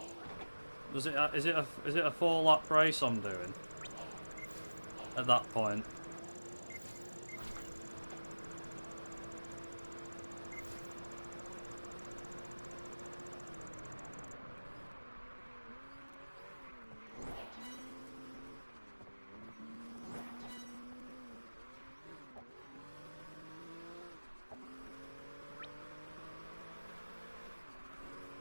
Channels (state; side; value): inverted; both; correlation -1.00